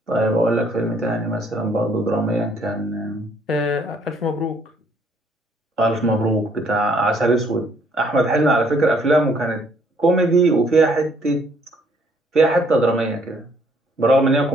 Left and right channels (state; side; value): normal; both; correlation 0.65